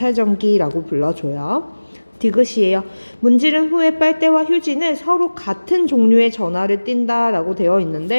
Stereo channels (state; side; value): inverted; both; correlation -1.00